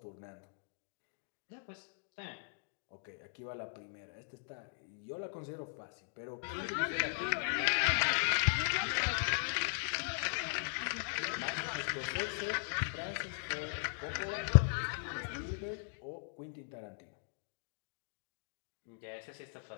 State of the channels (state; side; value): silent; right; digital silence